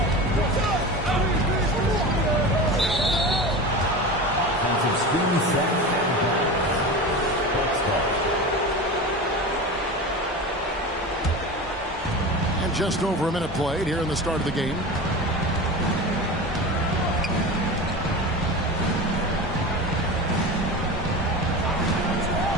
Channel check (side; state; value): both; normal; correlation 0.29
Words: Just over a minute played here in the start of the game.